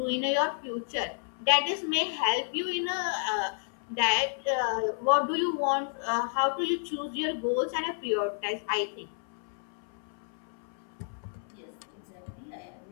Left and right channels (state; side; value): silent; right; 57 dB below the other